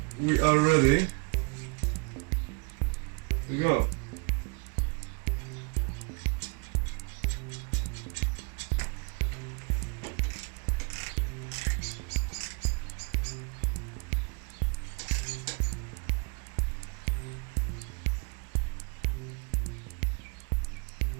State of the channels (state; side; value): quieter; left; 33.8 dB